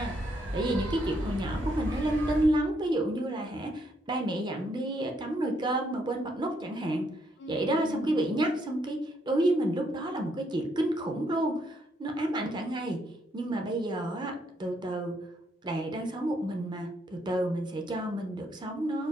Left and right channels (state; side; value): normal; both; correlation 0.73